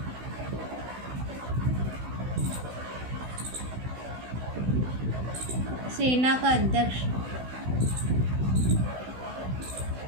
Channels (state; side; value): late; left; 16 ms